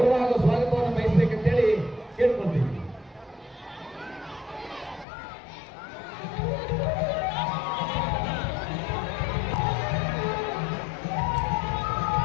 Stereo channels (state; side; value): drops out; right; at 5.1 s